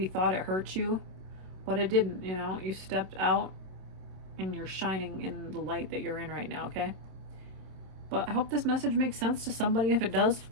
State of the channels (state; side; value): late; left; 27 ms